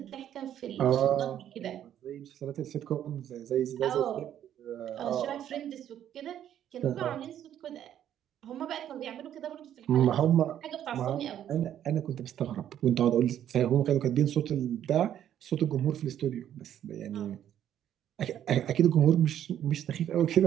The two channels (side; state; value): left; quieter; 10.6 dB